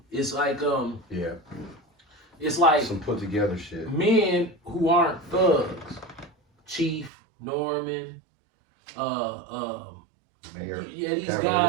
It's like Yeah. it's like Some put together shit. men who aren't thugs, Chief, Norman, Mayor. yeah, these Cavalier.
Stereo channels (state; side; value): drops out; left; at 7.1 s